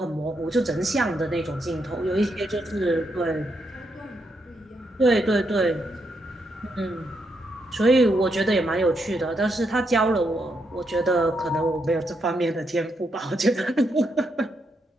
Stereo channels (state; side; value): normal; both; correlation 0.80